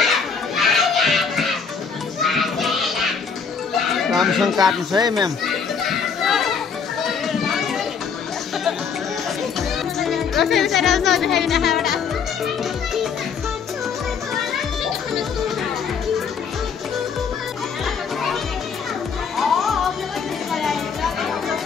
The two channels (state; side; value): quieter; right; 6.1 dB